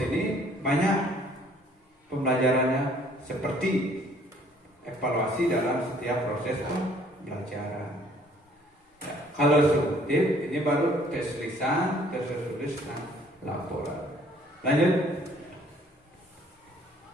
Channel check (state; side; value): normal; both; correlation 0.59